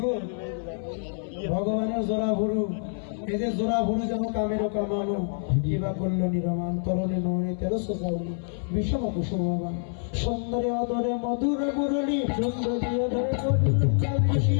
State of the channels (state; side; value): silent; right; 60 dB below the other